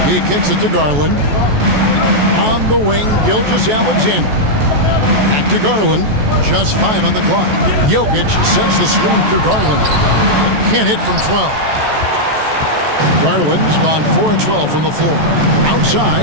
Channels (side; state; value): left; late; 14 ms